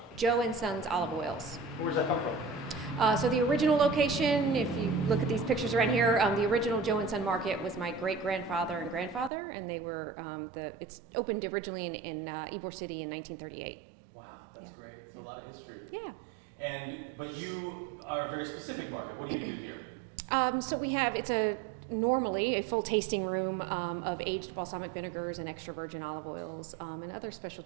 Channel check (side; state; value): left; drops out; at 9.3 s